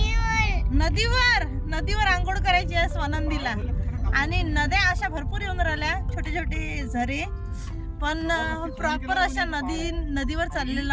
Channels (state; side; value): identical; both; correlation 1.00